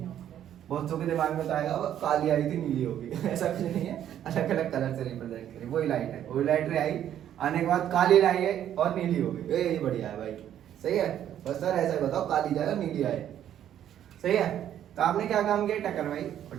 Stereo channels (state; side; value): quieter; left; 10.7 dB